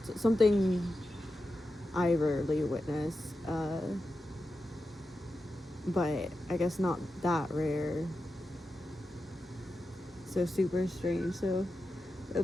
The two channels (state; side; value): normal; both; correlation 0.90